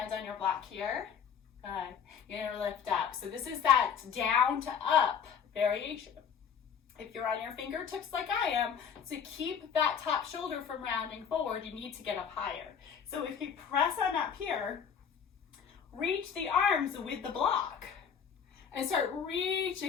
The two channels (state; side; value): quieter; right; 7.3 dB